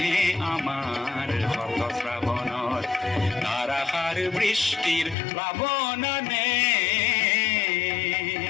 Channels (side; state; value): right; drops out; at 5.2 s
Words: আমার হত শ্রাবণর ধারাসার বৃষ্টির প্লাবনানে